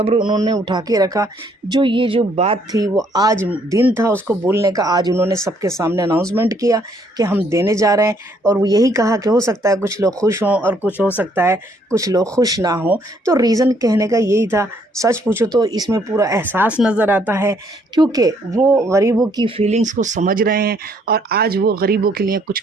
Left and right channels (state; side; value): normal; both; correlation 0.67